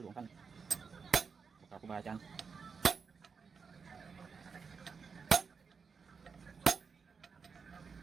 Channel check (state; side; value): quieter; left; 5.5 dB